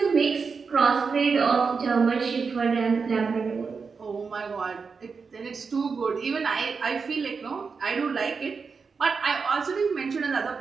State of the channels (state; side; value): quieter; left; 5.2 dB